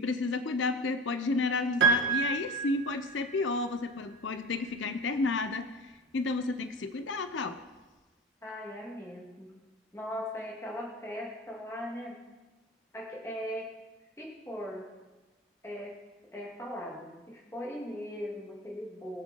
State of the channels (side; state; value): both; normal; correlation 0.32